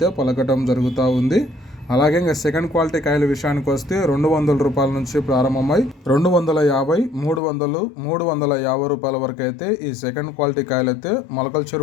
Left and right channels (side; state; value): right; drops out; at 7.4 s